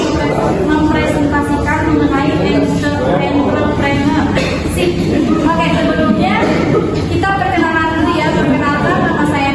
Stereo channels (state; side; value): identical; both; correlation 1.00